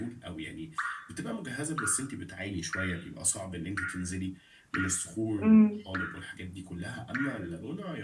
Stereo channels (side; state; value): both; identical; correlation 1.00